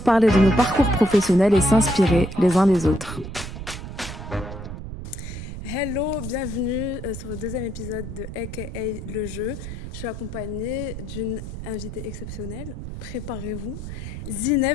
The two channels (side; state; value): right; noise; rumble, 9 dB below the sound